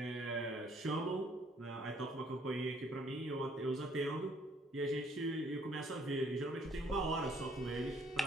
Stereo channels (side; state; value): both; normal; correlation 0.63